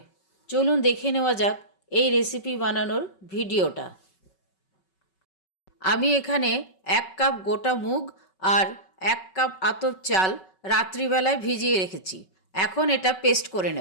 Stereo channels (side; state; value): right; late; 5.3 ms